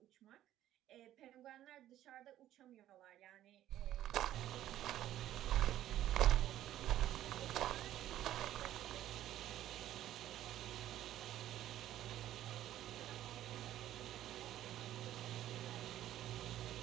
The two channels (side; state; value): left; quieter; 12.8 dB